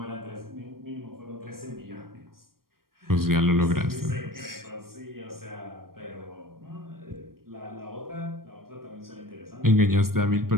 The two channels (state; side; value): late; left; 0.93 ms